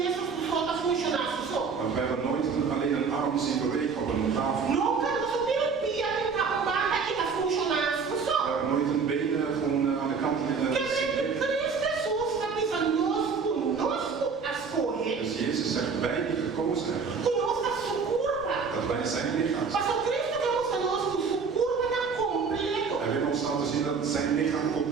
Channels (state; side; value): quieter; left; 5.3 dB